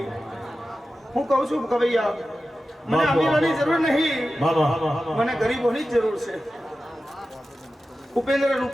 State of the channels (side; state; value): both; normal; correlation 0.93